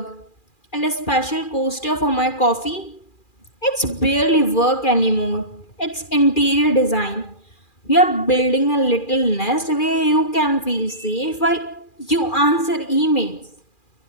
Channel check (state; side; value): late; right; 2.4 ms